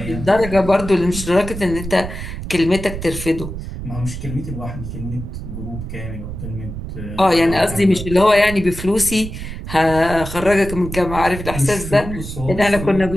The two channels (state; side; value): noise; right; rumble, 8 dB below the sound